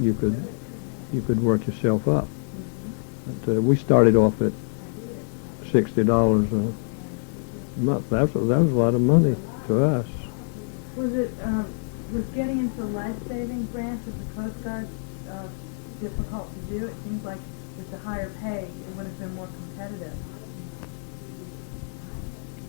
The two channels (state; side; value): silent; right; digital silence